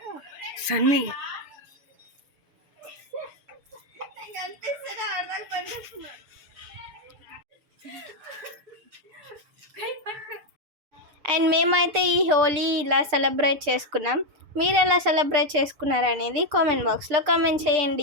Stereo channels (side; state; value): left; late; 6.8 ms